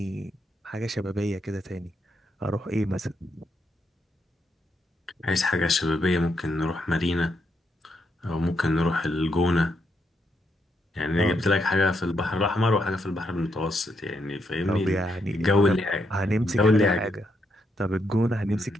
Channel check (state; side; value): normal; both; correlation 0.79